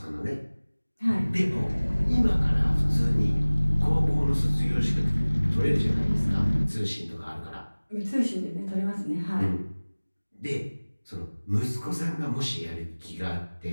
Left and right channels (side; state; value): both; inverted; correlation -1.00